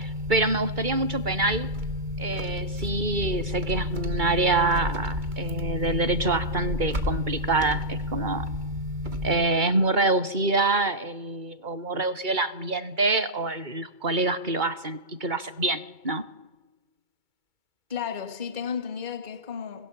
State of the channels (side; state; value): left; late; 2.2 ms